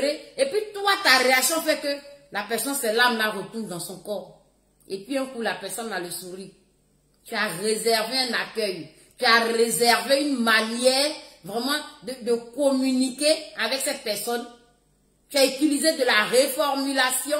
et puis toi, ta réaction fait que la personne, ses larmes la retournent dans son corps. Et puis un coup, la personne a le sourire. Tu as réservé un accueil. Tu as réservé une manière vraiment de communiquer avec cette personne. Tu as utilisé de la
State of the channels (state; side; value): identical; both; correlation 1.00